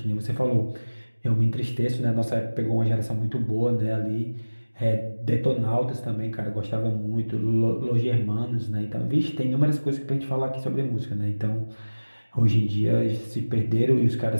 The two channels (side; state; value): both; inverted; correlation -1.00